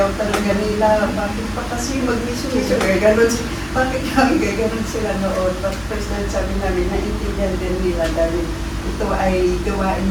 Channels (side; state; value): both; identical; correlation 1.00